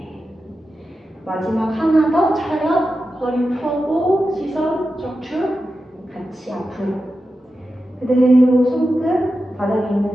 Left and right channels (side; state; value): both; normal; correlation 0.91